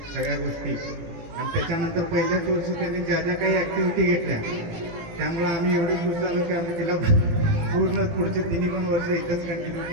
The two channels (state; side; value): late; left; 18 ms